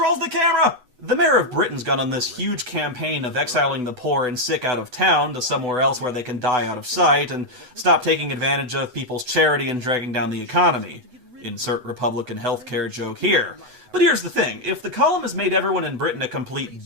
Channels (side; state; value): left; late; 8.0 ms